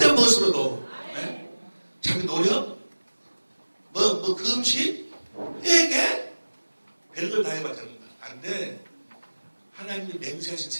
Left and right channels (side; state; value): both; inverted; correlation -1.00